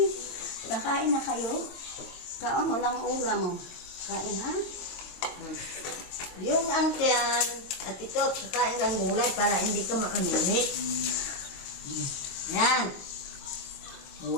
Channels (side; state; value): right; late; 22 ms